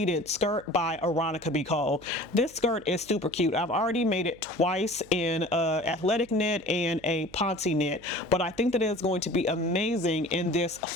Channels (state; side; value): noise; right; hum, 23 dB below the sound